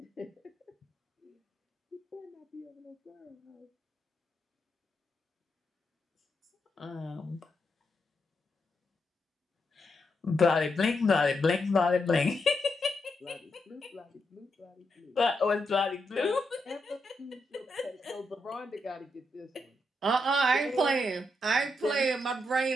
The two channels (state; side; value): normal; both; correlation 0.82